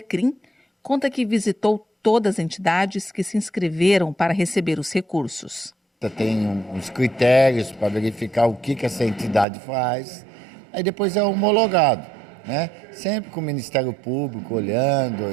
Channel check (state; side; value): drops out; left; at 9.5 s